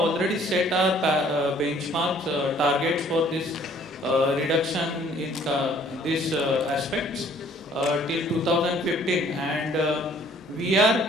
set our benchmarks, targets for this reduction in these aspects till 2015, and we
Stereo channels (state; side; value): normal; both; correlation 0.58